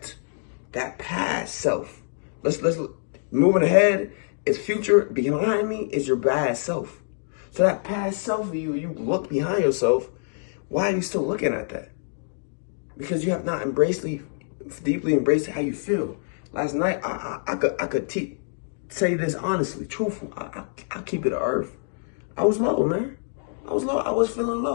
that past self. Let's moving ahead. It's future. Behind me is your bad self. So that past self of you look behind yourself. Why are you still looking at that? Because you have not deeply embraced how you feel. Last night, I could say this honestly, truthful. I keep it to earth. I was low, man. I was low. I was feeling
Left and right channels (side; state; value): right; silent; digital silence